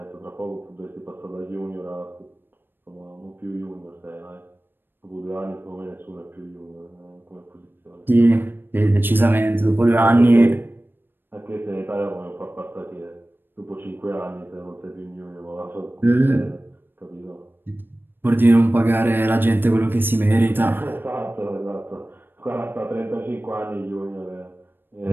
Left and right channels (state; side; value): late; left; 0.097 ms